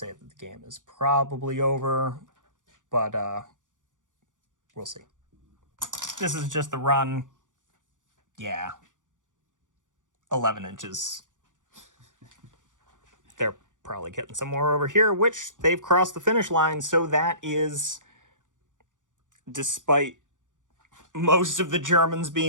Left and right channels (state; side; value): late; left; 0.87 ms